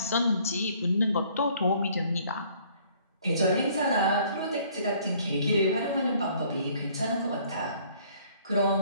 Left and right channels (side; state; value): both; inverted; correlation -0.59